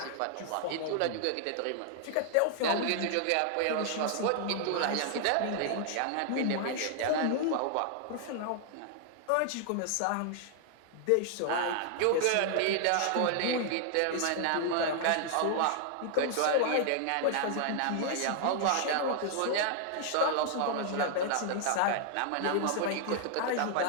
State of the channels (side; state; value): both; different; correlation 0.00